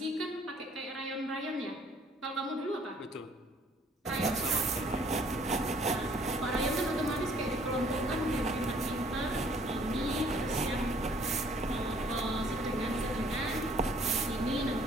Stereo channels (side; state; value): both; normal; correlation 0.59